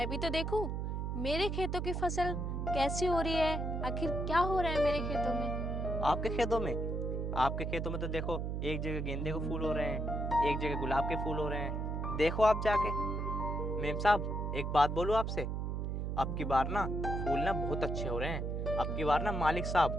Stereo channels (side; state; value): right; noise; hum, 2 dB below the sound